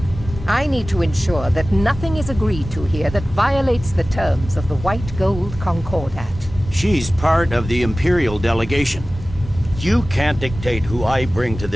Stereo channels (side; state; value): both; normal; correlation 0.97